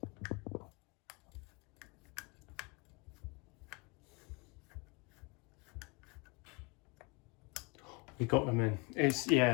We got them in.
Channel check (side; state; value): right; quieter; 29.0 dB